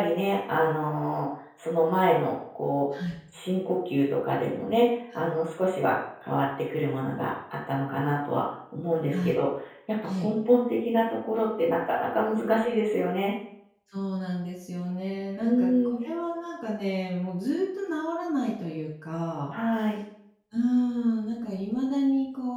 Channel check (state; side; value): identical; both; correlation 1.00